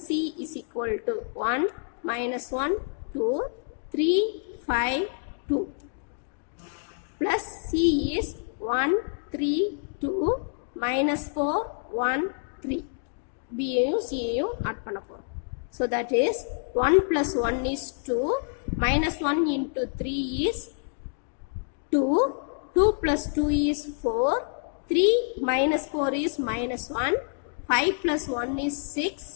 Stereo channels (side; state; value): right; silent; digital silence